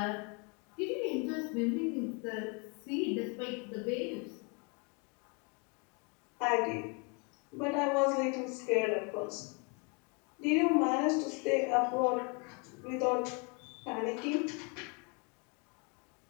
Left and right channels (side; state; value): right; quieter; 33.4 dB